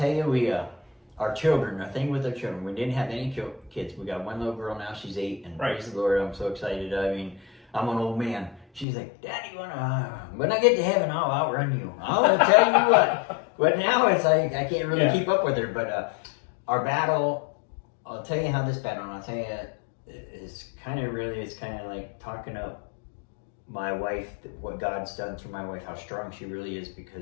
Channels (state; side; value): drops out; right; at 8.8 s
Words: you, our children, the thing with our children, we didn't have any kids. We got one little girl now, she's 8, and praise the Lord, I'm so excited. I mean, I'm an old man. She's like, Daddy, when I get to heaven, I'll outrun you. I'll tell you what. But now it's like, I can't really keep up with her. But our battle, I'll tell you how this battle, and I'll tell you, it's kind of like talking up my wife, what God's done through my wife, how strong she really is,